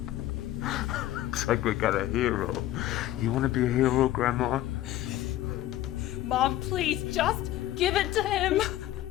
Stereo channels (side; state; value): right; quieter; 14.2 dB